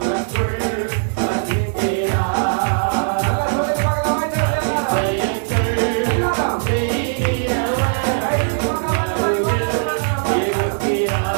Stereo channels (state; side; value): silent; left; digital silence